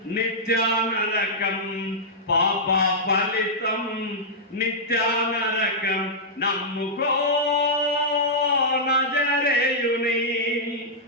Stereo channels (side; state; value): both; normal; correlation -0.10